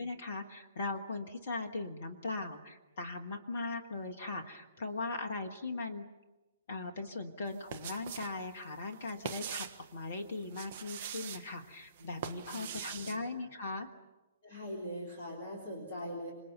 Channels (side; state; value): both; inverted; correlation -0.65